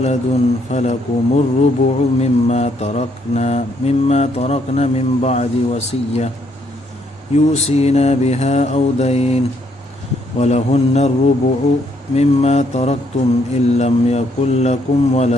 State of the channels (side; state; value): both; normal; correlation 0.71